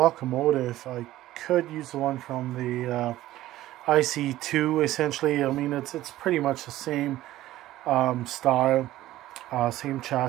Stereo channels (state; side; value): quieter; left; 15.1 dB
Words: I could use the one from the ICE2 essentially. I mean, it's pretty much the same style, same